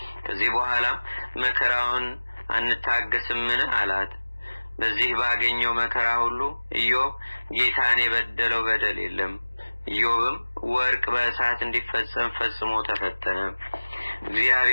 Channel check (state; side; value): inverted; both; correlation -1.00